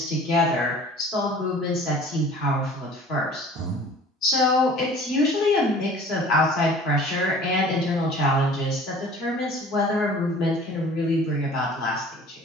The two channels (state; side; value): normal; both; correlation 0.47